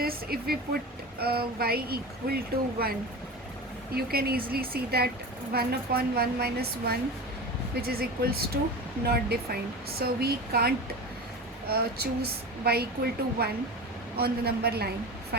if we put y equal to 1, you can easily see that 1 upon 1 minus 1, which is equals to not defined. So we can't choose y equal to 1 on the number line.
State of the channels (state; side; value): normal; both; correlation 0.29